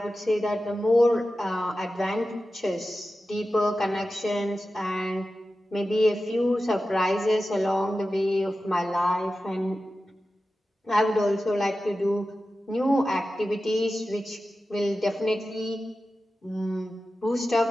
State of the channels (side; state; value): both; normal; correlation 0.93